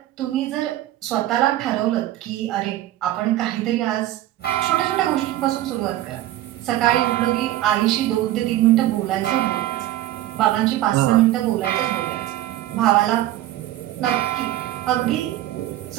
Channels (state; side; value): quieter; left; 14.3 dB